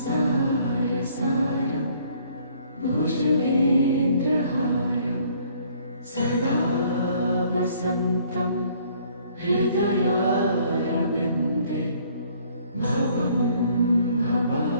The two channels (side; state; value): both; inverted; correlation -0.61